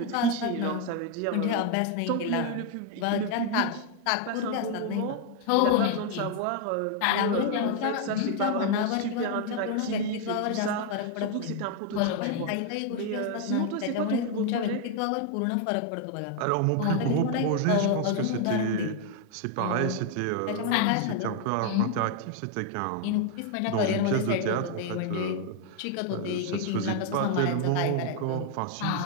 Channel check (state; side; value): different; both; correlation 0.00